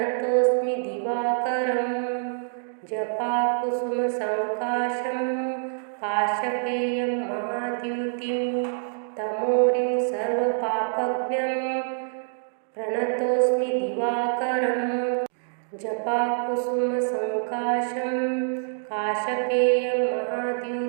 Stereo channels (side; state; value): left; silent; digital silence